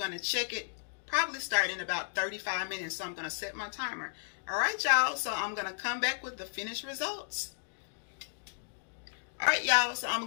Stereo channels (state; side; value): silent; right; digital silence